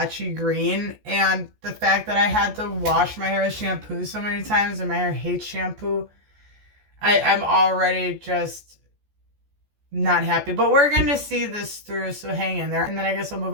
green. And the fact that I had to wash my hair with shampoo so many times and my hair hates shampoo, I'm already just not happy. But we're going to see this through, so hang in there. And then I guess I'll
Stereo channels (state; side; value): late; left; 14 ms